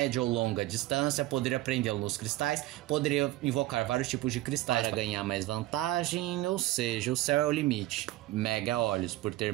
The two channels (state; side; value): quieter; left; 16.8 dB